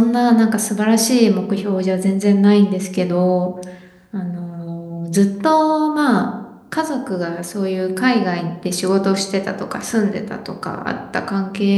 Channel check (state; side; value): identical; both; correlation 1.00